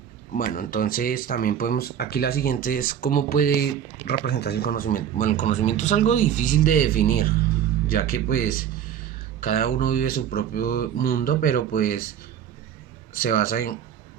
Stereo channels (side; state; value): left; quieter; 9.3 dB